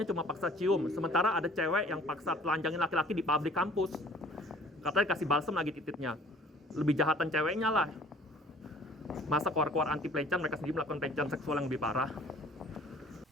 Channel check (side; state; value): both; normal; correlation 0.52